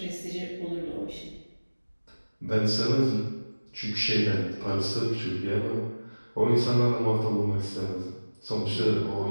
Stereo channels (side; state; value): both; inverted; correlation -1.00